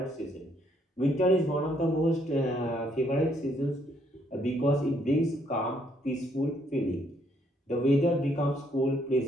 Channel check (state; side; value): normal; both; correlation 0.70